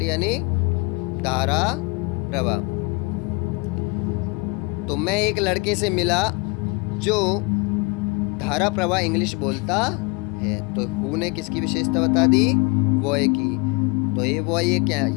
यानी धारा प्रवाह। तो मैं एक लड़के से मिला जो धारा प्रवाह इंग्लिश बोलता है। तो हु ने किसकी विशेषता बता दी? बॉय की। तो ये बॉय, ये क्या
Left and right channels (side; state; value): right; quieter; 28.8 dB